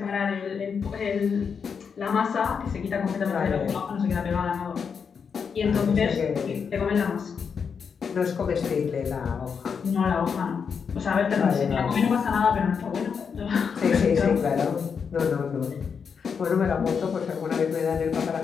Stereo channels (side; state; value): right; quieter; 6.3 dB